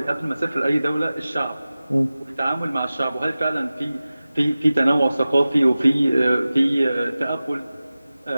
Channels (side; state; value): both; inverted; correlation -0.96